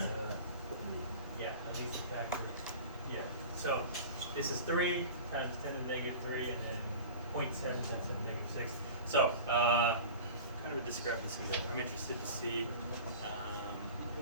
Yeah, at least a factor. Yeah. So this is 3 times 10 to the negative 3, and then 0.7 times 10 to the negative 6. So kind of a discrepancy there. I'm interested to see.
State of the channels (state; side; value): inverted; both; correlation -0.36